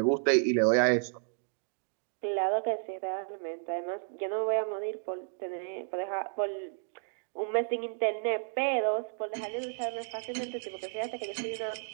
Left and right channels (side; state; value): left; silent; digital silence